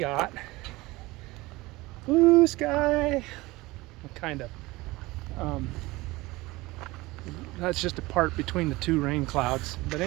blue sky. Kind of. That's just a part between the two rain clouds. But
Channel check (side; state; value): left; quieter; 20.8 dB